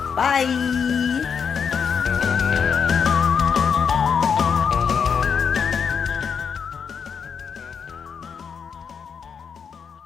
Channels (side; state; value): right; quieter; 6.6 dB